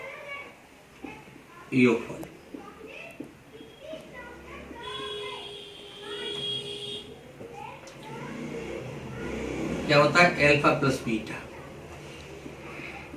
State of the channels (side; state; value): both; identical; correlation 1.00